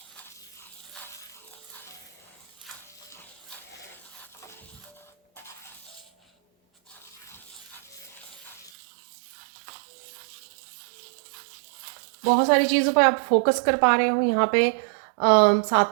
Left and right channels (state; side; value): drops out; left; at 8.7 s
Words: बहुत सारी चीज़ों पे आप फोकस कर पा रहे हो यहाँ पे।